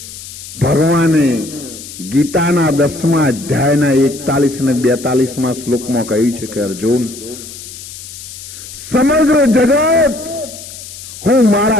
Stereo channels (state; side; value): noise; left; hiss, 14 dB below the sound